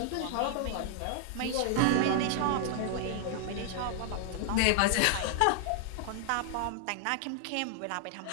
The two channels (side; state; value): both; different; correlation 0.00